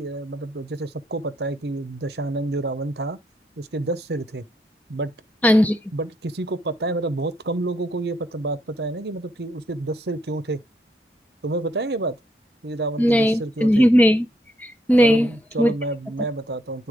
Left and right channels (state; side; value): normal; both; correlation 0.74